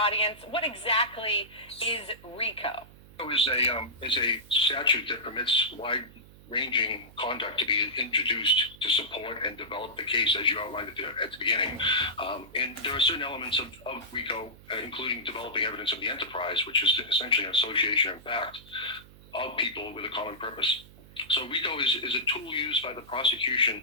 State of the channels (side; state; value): right; noise; hum, 22 dB below the sound